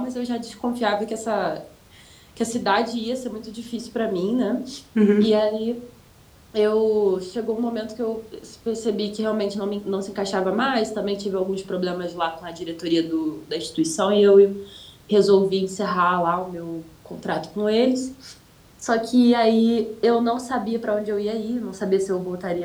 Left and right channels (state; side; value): identical; both; correlation 1.00